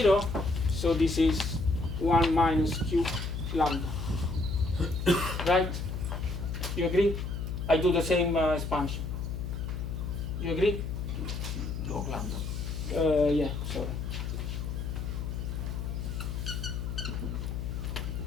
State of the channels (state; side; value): noise; left; hum, 4 dB below the sound